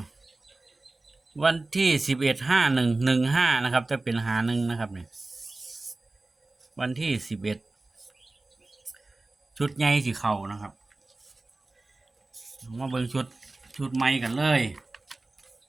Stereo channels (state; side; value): quieter; left; 3.1 dB